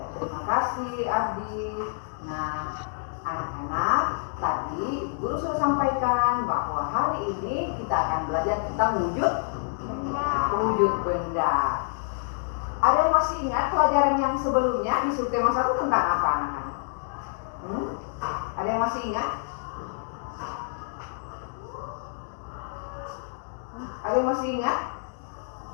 terima kasih Ardi. Nah, anak-anak, tadi guru sudah sampaikan bahwa hari ini kita akan belajar tentang wujud benda. Ada yang masih ingat pelajaran yang sebelumnya di subtema 1 tentang apa, anak-anak? Ada yang masih ingat? Ada yang masih ingat?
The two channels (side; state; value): right; silent; digital silence